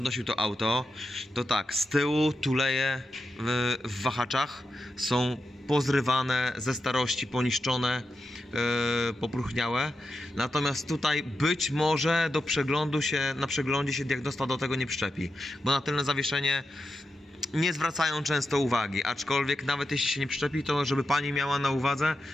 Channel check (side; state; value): both; normal; correlation 0.88